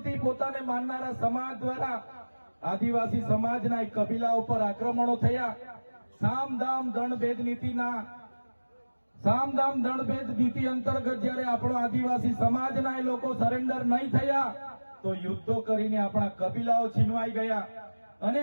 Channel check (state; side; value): inverted; both; correlation -1.00